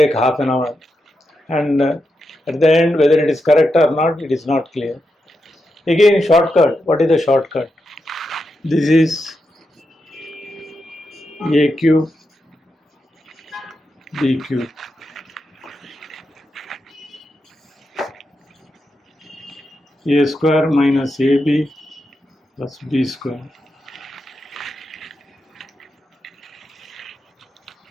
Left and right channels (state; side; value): normal; both; correlation 0.86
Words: half an hour, and at the end whether it is correct or not, it is not clear. Again, shortcut. What is the shortcut? This is a cube b cube. A square minus ab plus b square.